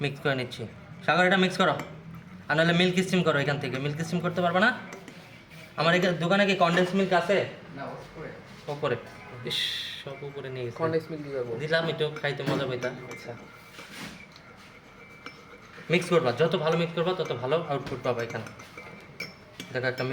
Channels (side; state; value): both; identical; correlation 1.00